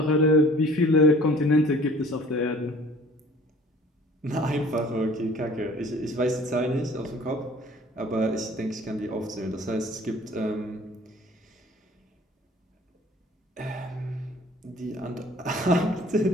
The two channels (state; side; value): normal; both; correlation 0.50